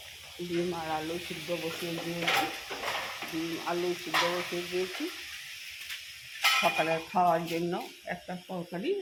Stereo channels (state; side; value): identical; both; correlation 1.00